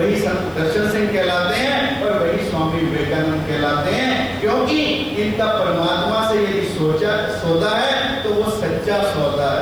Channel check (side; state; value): left; noise; hiss, 28 dB below the sound